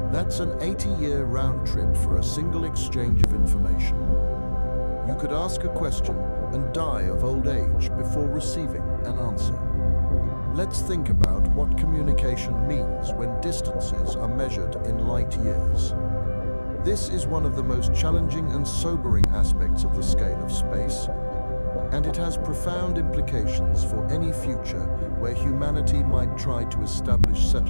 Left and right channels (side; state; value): both; inverted; correlation -1.00